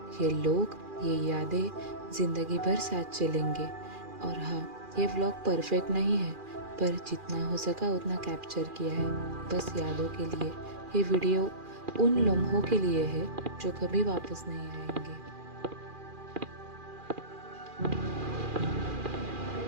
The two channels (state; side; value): late; left; 2.4 ms